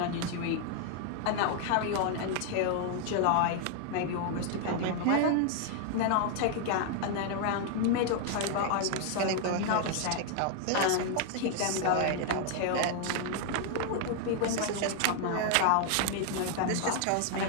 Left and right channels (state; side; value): different; both; correlation 0.00